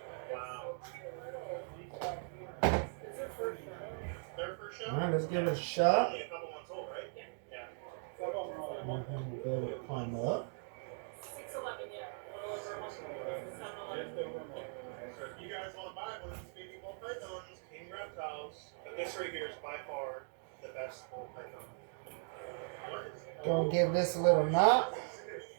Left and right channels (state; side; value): silent; left; 52 dB below the other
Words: Wow. Their first show? Alright, let's give it a shot. Only a couple months old, right? Yeah. And then we'll be able to climb up. 6'11", yeah. So if you guys want to buy one of these baby ball pythons, King Reptiles, but this right here is by far the best ball python. Gonna give this a little knot.